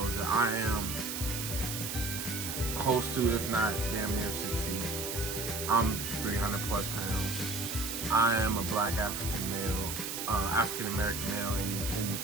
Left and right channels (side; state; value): right; noise; hiss, 4 dB below the sound